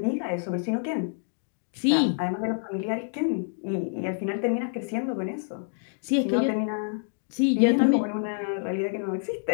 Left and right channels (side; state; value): right; silent; digital silence